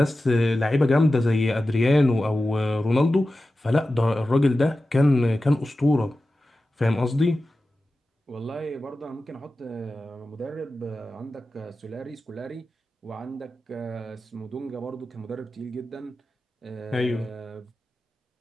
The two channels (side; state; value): both; normal; correlation 0.94